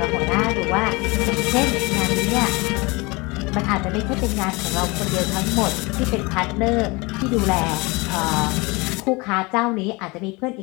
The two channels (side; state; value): right; quieter; 25.6 dB